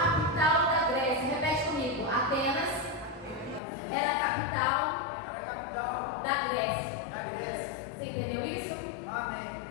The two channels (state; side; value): drops out; right; at 3.6 s